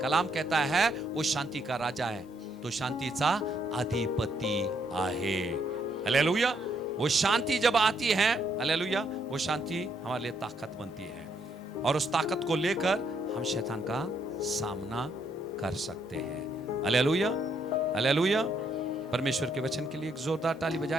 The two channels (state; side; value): normal; both; correlation 0.73